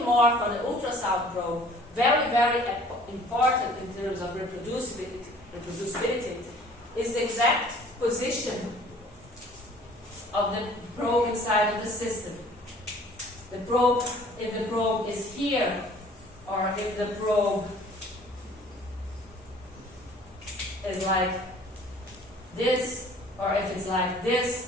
more for the ultrasound probe, very, very important in terms of reproducibility is the exact position of the probe inside of the system. The probe, if the probe is here, or if the probe is like this, or if it's like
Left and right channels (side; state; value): both; normal; correlation 0.52